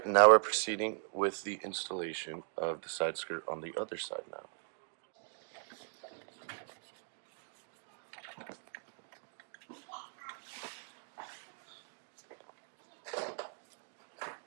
now we're proceeding with the installation of the side skirt on the other side now.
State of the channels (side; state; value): left; silent; digital silence